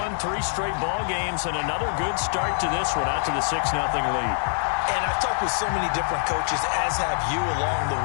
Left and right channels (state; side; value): silent; right; 62 dB below the other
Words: 3 straight ball games and another good start to this one out to the 6-0 lead. And I've talked with so many different coaches, as have you along the